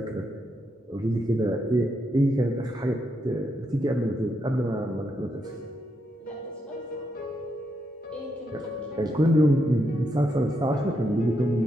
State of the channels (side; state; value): both; normal; correlation 0.81